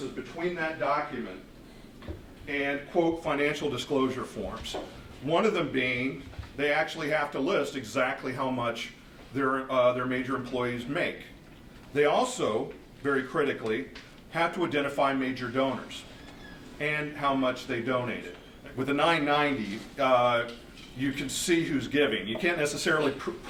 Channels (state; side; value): identical; both; correlation 1.00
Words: between that document and, quote, financial disclosure forms. One of them being they actually have to list exactly how much their major employees make. They also, very critically, have to identify major donors and how much they donated. With the 990, you can see who's giving. You can't necessarily